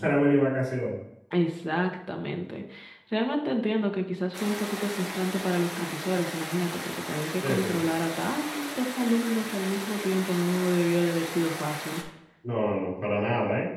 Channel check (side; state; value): both; identical; correlation 1.00